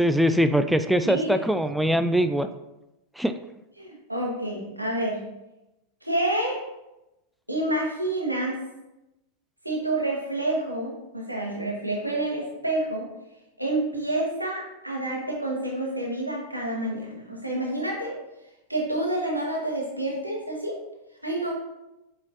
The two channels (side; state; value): both; normal; correlation 0.22